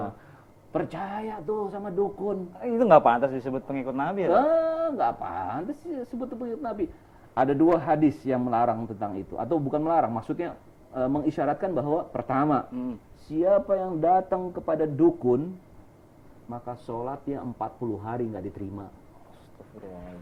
Percaya tuh sama dukun. Itu nggak pantas disebut pengikut Nabi ya? Nggak pantas disebut pengikut Nabi. Ada 2 hadis yang melarang tentang itu, atau bukan melarang, maksudnya mengisyaratkan bahwa pertama, siapa yang datang kepada dukun, maka sholatnya 40 hari nggak diterima.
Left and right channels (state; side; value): identical; both; correlation 1.00